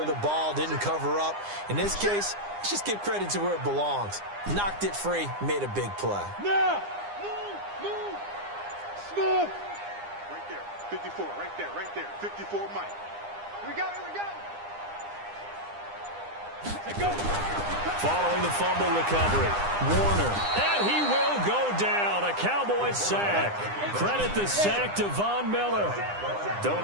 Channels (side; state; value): left; late; 9.8 ms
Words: the ball, didn't cover up. In this case, let's just give credit to where it belongs. Knocked it free, made a big play. Now! Move! Smooth! Right there. 54, right there. 54, Mike. Here we go. Let's go. following the fumble recovery. Warner, and he will go down. A Cowboys sack. Credit the sack to Von Miller.